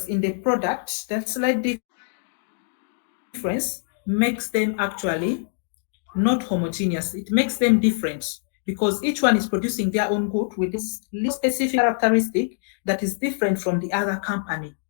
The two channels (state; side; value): silent; right; digital silence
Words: in the product, that slight difference, makes them actually not homogeneous. It makes them different because each one is producing their own good with this little specific characteristic that is different from the other company.